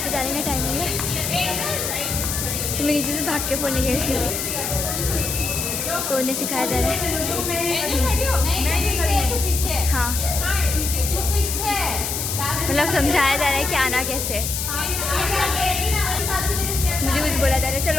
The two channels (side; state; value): left; noise; hiss, 2 dB below the sound